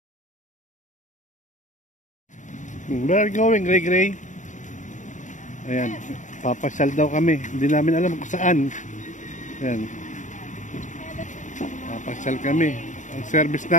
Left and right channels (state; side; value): late; right; 0.36 ms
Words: Where are you going, Gray? Ayan, papasyal daw kami. Hindi namin alam kung saan. Ayan. Papasyal kami. Ang service